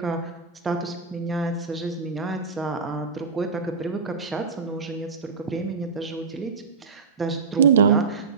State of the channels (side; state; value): left; quieter; 5.0 dB